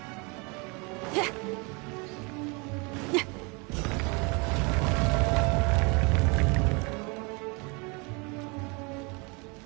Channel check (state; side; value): quieter; left; 30.1 dB